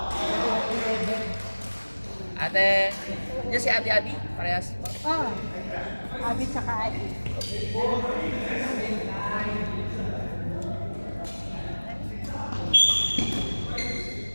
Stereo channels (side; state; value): both; inverted; correlation -1.00